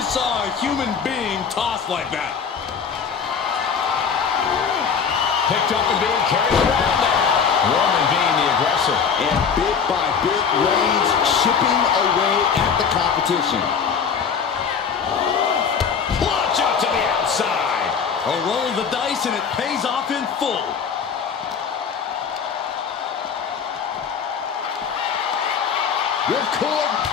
saw a human being tossed like that. Picked up and being carried around now. Roman being the aggressor. And bit by bit, Reigns chipping away at the competition. Launch out to the outside. A roll of the dice and it pays off in full. Ripcord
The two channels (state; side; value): quieter; right; 6.5 dB